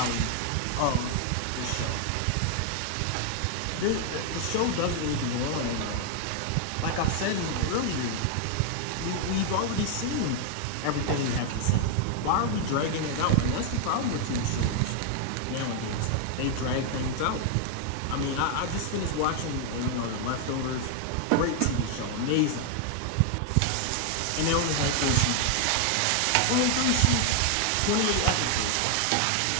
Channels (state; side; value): different; both; correlation 0.00